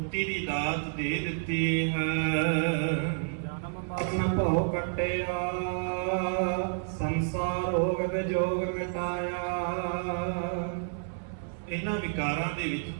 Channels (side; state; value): left; silent; digital silence